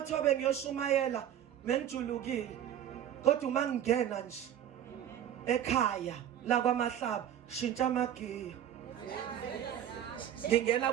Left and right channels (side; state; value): left; quieter; 10.5 dB